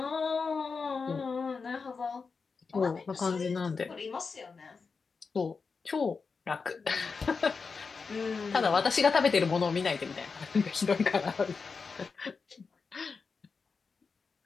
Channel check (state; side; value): quieter; right; 4.9 dB